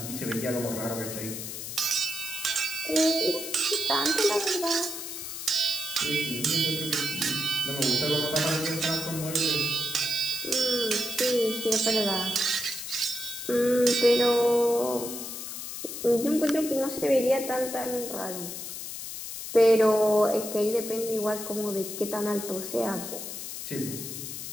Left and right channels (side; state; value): left; noise; hiss, 7 dB below the sound